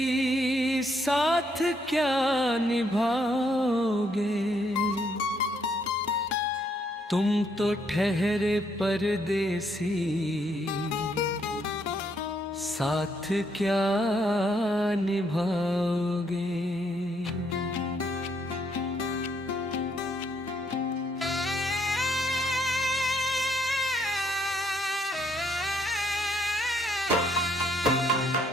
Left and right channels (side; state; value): both; normal; correlation 0.72